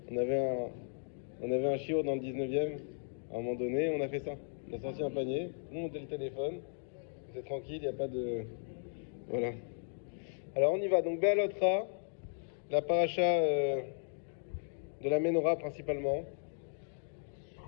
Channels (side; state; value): right; silent; digital silence